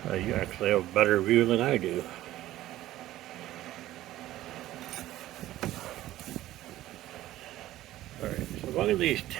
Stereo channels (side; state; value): left; quieter; 14.8 dB